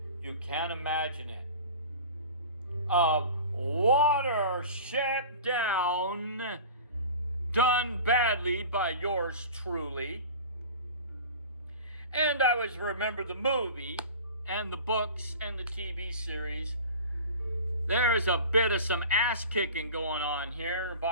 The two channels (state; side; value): inverted; both; correlation -0.37